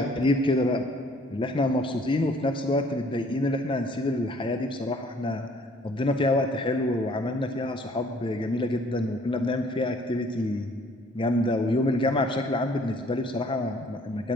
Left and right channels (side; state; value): both; normal; correlation 0.58